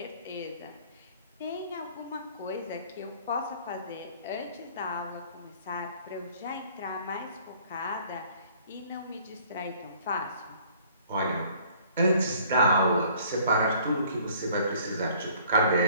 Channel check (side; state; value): both; inverted; correlation -0.56